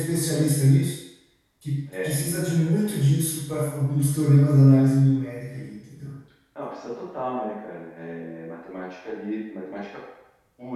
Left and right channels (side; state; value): both; identical; correlation 1.00